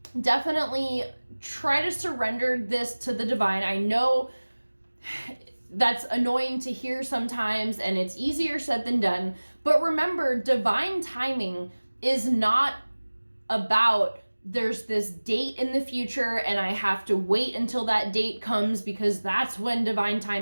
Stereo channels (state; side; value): inverted; both; correlation -1.00